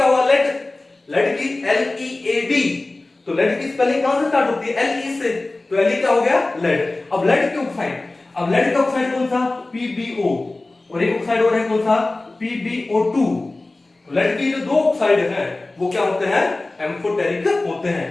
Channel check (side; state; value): right; quieter; 3.0 dB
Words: हुआ? लेड। लेड की LEAD। तो लेड की स्पेलिंग कहां से स्टार्ट होती है? Le से। तो Le क्या हो गया? लेड। अब लेड के ऑक्साइड, अब लेड का ऑक्साइड कौन सा? PbO। और एक ऑक्साइड और है कौन सा? PbO2। लेड की जो दो ऑक्साइड हैं वो क्या होते हैं? एम्फोटेरिक होते हैं।